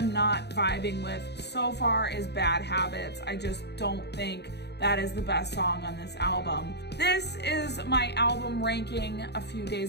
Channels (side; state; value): right; late; 0.49 ms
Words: not vibing with so far is Bad Habits. I just don't think that is the best song on this album. This is my album ranking a few